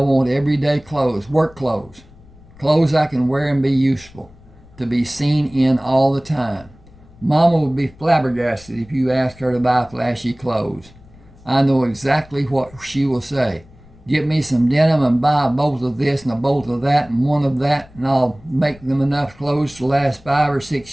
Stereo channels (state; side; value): noise; left; rumble, 24 dB below the sound